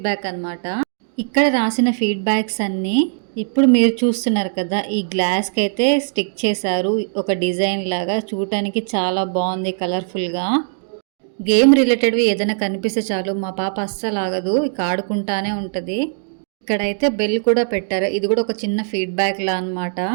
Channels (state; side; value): silent; left; digital silence